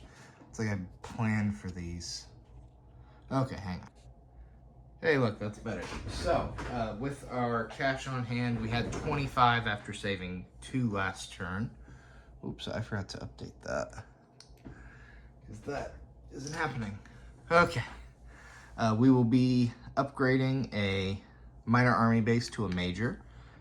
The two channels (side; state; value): both; identical; correlation 1.00